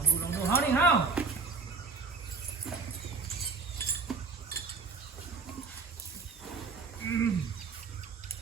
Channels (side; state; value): left; quieter; 4.5 dB